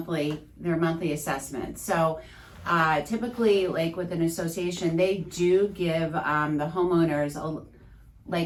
assessment. So typically, like with an association, they do give the homeowners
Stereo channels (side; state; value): both; identical; correlation 1.00